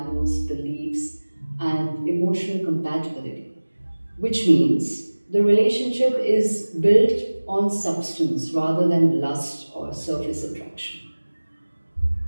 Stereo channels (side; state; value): both; inverted; correlation -1.00